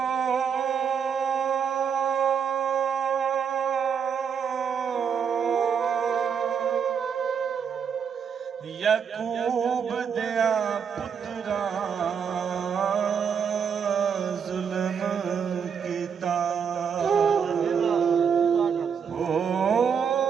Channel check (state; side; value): quieter; left; 7.0 dB